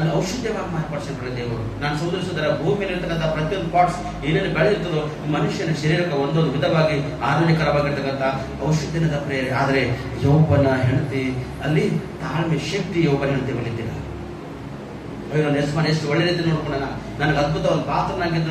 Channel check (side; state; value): both; identical; correlation 1.00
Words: ಔಷಧವಾಗಿ ಮಾರ್ಪಡಿಸಿಕೊಳ್ಳಿ ದೇವರು. ನಾನು ಸೋದರಿಸಿದರ ಭೂಮಿಯಲ್ಲಿ ಇರ್ತಕ್ಕಂಥ ಪ್ರತಿಯೊಂದು ಪಾರ್ಟ್ಸ್ ಏನೇನು ಬೆಳೆದಿರ್ತದೋ ಮನುಷ್ಯನ ಶರೀರಕ್ಕೆ ಒಂದೊಂದು ವಿಧವಾಗಿ ಆರೋಗ್ಯಕರವಾಗಿರ್ತಕ್ಕಂಥ ಔಷಧಿನದ ಪ್ರೇರೆ. ಆದರೆ ಯೌವನ ಹೆಂಡತಿ ಅಲ್ಲಿ ತಾಳ್ಮೆ ಶಕ್ತಿ ಯೌವನ ಹೆಂಡತಿ ಬಲಿದ್ದಿಲ್ಲ. ನಾನು ಎಷ್ಟು ಒಳ್ಳೆ ರೀತಿ ನೋಡ್ಕೊಳ್ಳೋಣ, ನನಗೆ ಅದ್ಭುತ ಒಂದು ಪಾತ್ರನಾಗಿದ್ದು